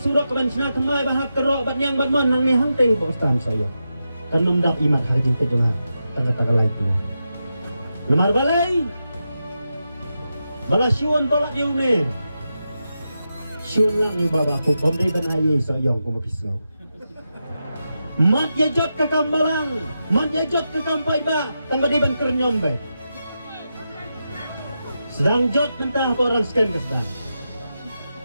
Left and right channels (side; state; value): both; inverted; correlation -0.88